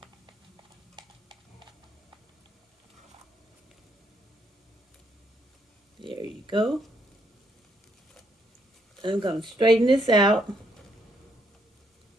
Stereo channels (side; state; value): both; normal; correlation 0.73